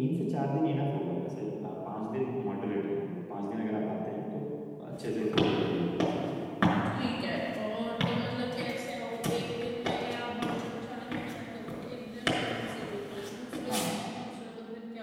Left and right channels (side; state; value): both; identical; correlation 1.00